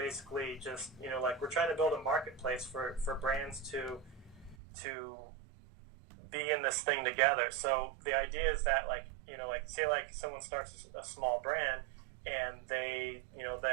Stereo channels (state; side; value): drops out; left; at 4.5 s